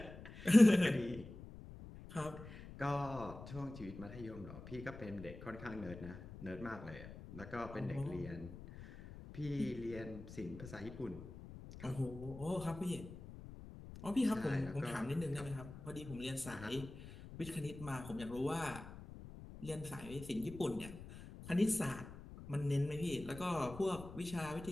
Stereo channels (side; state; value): left; noise; rumble, 13 dB below the sound